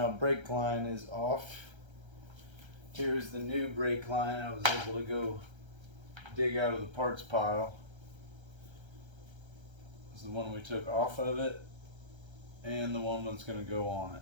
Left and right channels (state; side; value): late; left; 1.3 ms